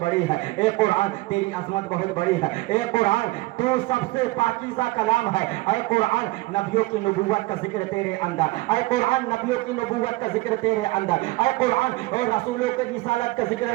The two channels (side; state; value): left; quieter; 20.7 dB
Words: بڑی ہے، اے قرآن تیری عظمت بہت بڑی ہے، اے قرآن تو سب سے پاکیزہ کلام ہے، اے قرآن نبیوں کی نبوت کا ذکر تیرے اندر، اے قرآن نبیوں کی نبوت کا ذکر تیرے اندر، اے قرآن اور رسولوں کی رسالت کا